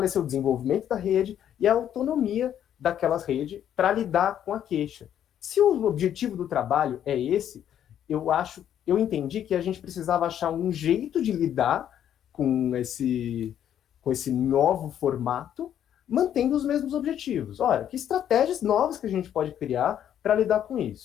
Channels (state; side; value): quieter; right; 10.1 dB